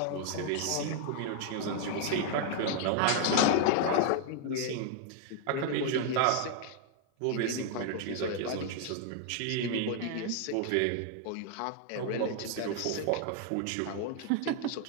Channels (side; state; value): both; different; correlation 0.00